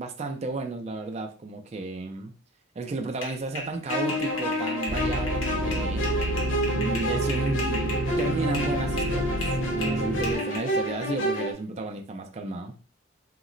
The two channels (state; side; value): normal; both; correlation 0.41